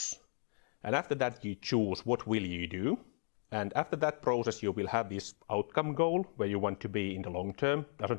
And after that you choose what will you do, and after that process you will have this outcome goal where you want to be in the long term.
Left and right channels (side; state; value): right; silent; digital silence